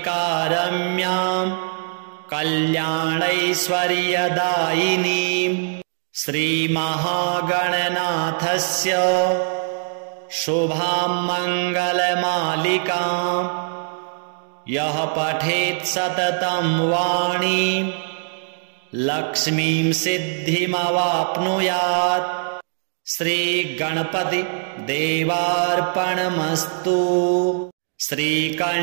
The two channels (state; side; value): silent; left; digital silence